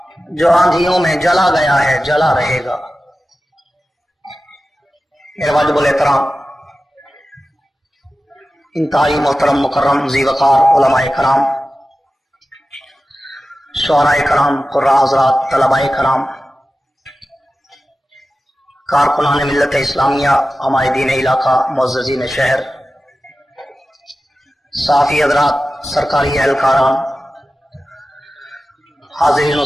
جو آندھیوں میں جلا گیا ہے جلا رہے گا. میرے واجب الاحترام انتہائی محترم مکرم ذی وقار علماء کرام، شعراء کرام، قراء حضرات، طلباء کرام، کارکنان ملت اسلامیہ، عمائدین علاقہ، معززین شہر، صحافی حضرات، سرکاری اہلکاران، حاضرین و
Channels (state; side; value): normal; both; correlation 0.94